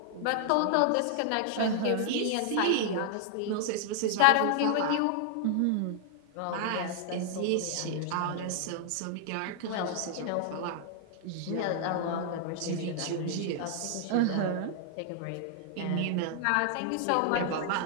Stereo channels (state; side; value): different; both; correlation 0.00